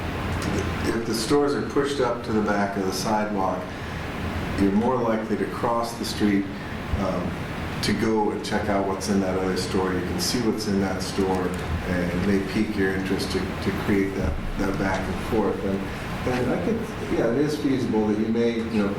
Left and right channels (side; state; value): both; identical; correlation 1.00